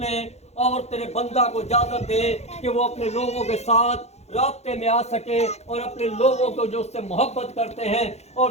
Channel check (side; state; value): right; late; 0.31 ms